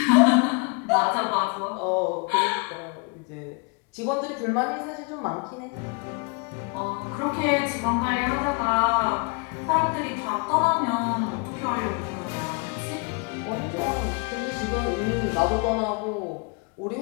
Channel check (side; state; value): right; quieter; 33.1 dB